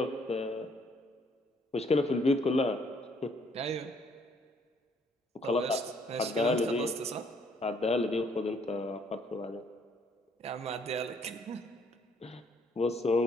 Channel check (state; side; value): normal; both; correlation 0.66